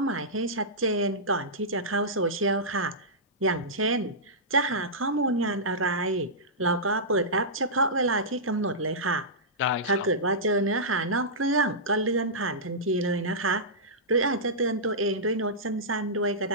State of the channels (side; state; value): both; normal; correlation -0.15